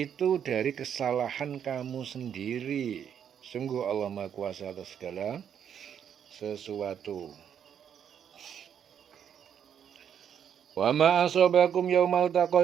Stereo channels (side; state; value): left; quieter; 8.6 dB